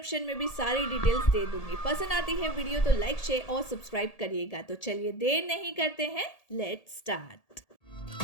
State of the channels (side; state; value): right; late; 1.8 ms